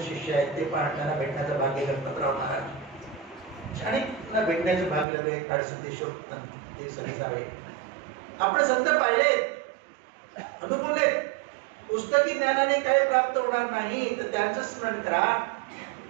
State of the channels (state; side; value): drops out; left; at 5.1 s